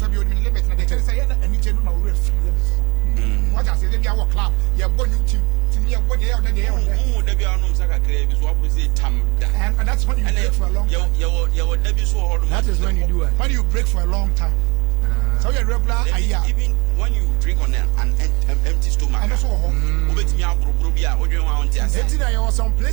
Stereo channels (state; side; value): quieter; left; 26.1 dB